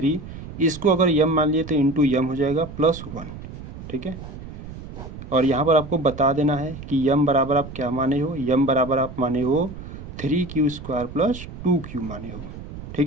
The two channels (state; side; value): noise; right; rumble, 12 dB below the sound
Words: इसको अगर m मान लिए तो इंटू m हो जाएगा +1, ठीक है। और यहाँ पर आपको बता देना है कि m बराबर आप क्या माने हो, m बराबर आप माने हो 3q² प्लस 2q माने हो,